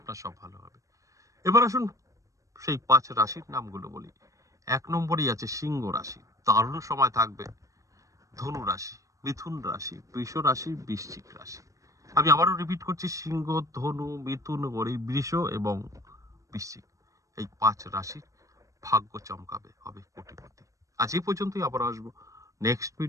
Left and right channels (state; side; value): late; left; 0.16 ms